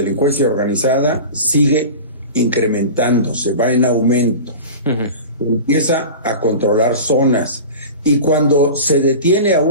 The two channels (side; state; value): both; inverted; correlation -0.33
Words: organizada sigue incrementándose, va en aumento. Empieza a controlar zonas. Y cuando se detiene a